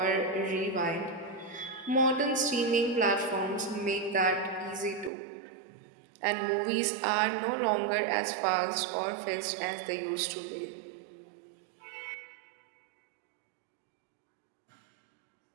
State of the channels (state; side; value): drops out; left; at 5.1 s